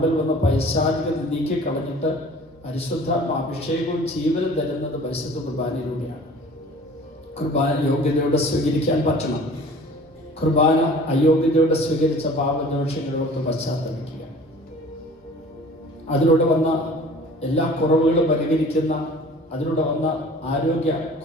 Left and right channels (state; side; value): normal; both; correlation 0.47